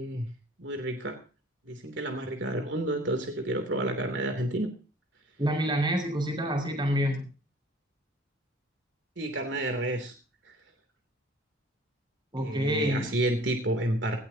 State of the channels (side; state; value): both; normal; correlation 0.50